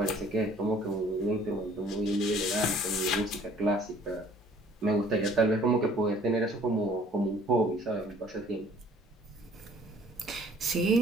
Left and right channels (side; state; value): both; normal; correlation 0.55